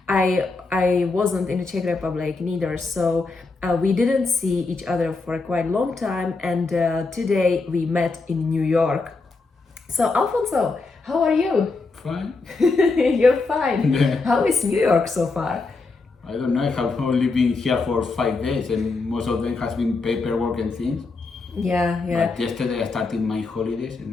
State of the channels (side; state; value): right; quieter; 3.8 dB